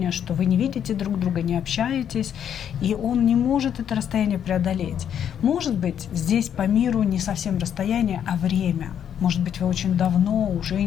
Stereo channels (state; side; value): quieter; right; 9.1 dB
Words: что вы не видите друг друга, не общаетесь, и он не может это расстояние преодолеть. Может быть, здесь по миру не совсем расстояние, а время. Может быть, вы очень давно уже